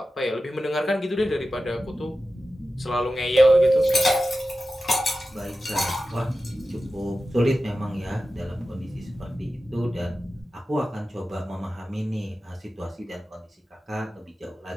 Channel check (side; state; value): both; normal; correlation 0.93